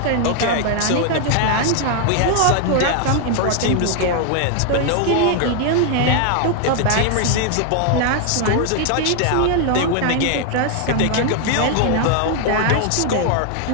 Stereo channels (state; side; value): different; both; correlation 0.00